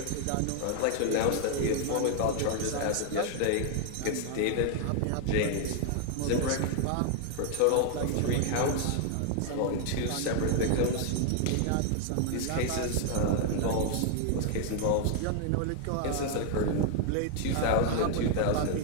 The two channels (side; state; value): both; different; correlation 0.00